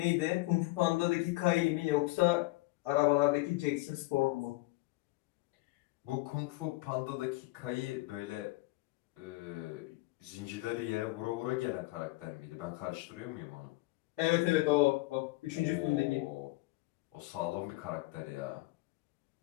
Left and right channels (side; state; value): right; quieter; 21.5 dB